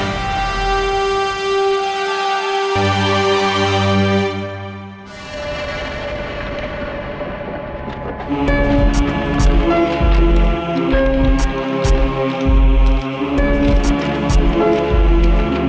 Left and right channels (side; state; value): both; identical; correlation 1.00